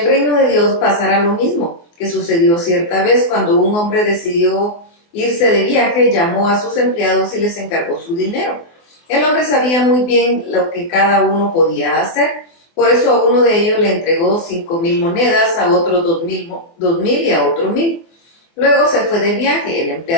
reino de Dios pasará lo mismo que sucedió cierta vez cuando un hombre decidió irse de viaje, llamó a sus empleados y les encargó su dinero. El hombre sabía muy bien lo que cada uno podía hacer, por eso a uno de ellos le entregó 5,000 monedas, a otro 2,000 y a otro 1,000. Luego se fue de viaje. El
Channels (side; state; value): right; late; 24 ms